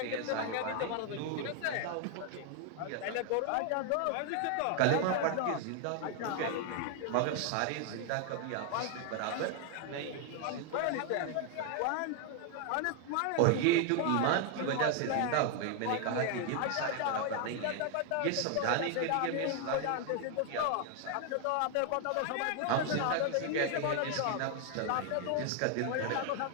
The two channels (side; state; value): both; different; correlation 0.00